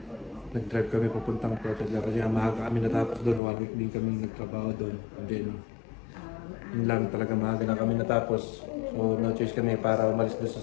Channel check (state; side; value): drops out; right; at 3.4 s